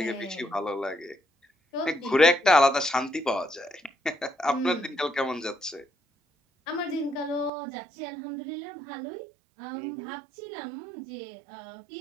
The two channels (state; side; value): drops out; left; at 7.5 s